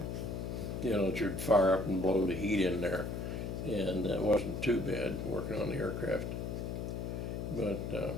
know, that you'd fire up and blow the heat in there. And it wasn't too bad working on the aircraft. But,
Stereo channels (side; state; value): left; noise; hum, 4 dB below the sound